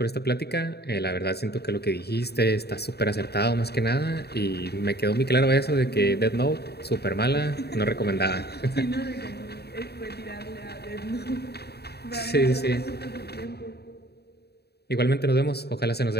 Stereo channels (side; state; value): right; late; 0.47 ms